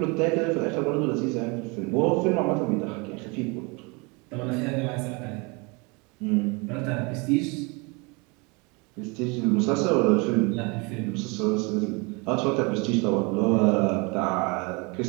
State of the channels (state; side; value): quieter; left; 29.1 dB